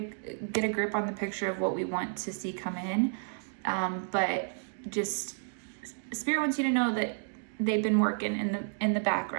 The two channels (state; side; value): silent; left; digital silence